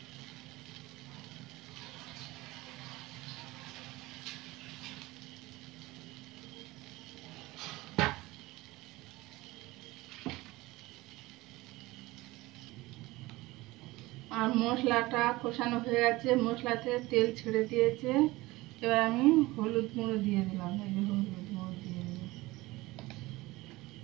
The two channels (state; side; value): quieter; left; 20.2 dB